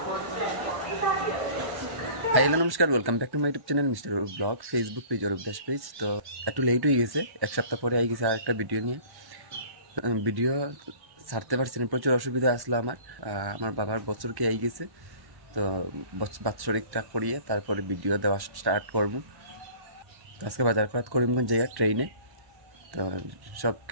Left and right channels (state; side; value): late; left; 1.1 ms